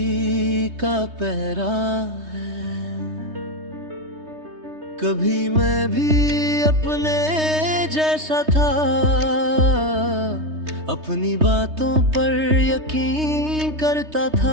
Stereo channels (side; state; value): left; late; 3.2 ms